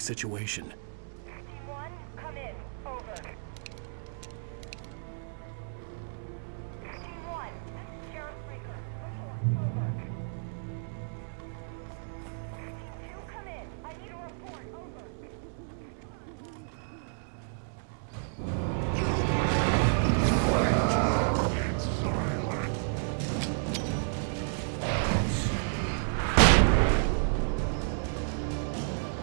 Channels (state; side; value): silent; left; digital silence